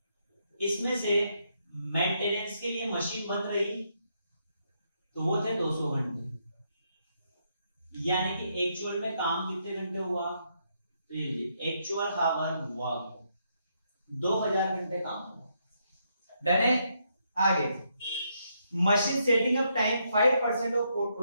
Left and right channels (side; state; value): both; inverted; correlation -0.77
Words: इसमें से मेंटेनेंस के लिए मशीन बन रही तो वो थे 200 घंटे, यानी कि एक्चुअल में काम कितने घंटे हुआ, तो ये लीजिए एक्चुअल हावर वर्क 2000 घंटे काम हुआ। डन है। आगे machine setting up time 5% of